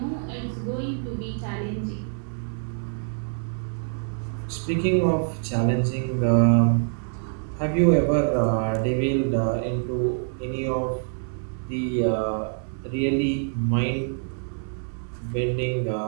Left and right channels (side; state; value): left; silent; 61 dB below the other